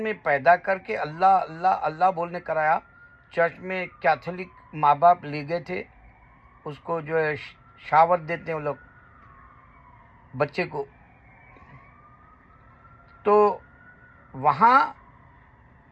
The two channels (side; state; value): both; identical; correlation 1.00